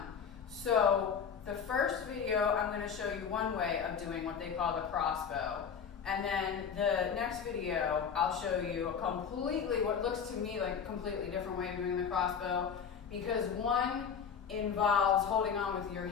So the first video, I'm going to show you one way of doing what they call the crossbow. And then the next video, I'll show you a completely, what looks to me like a completely different way of doing the crossbow, because one involves holding on with your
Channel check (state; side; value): quieter; right; 6.9 dB